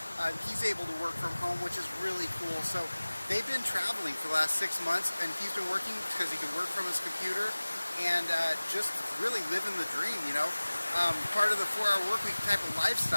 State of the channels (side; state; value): both; inverted; correlation -1.00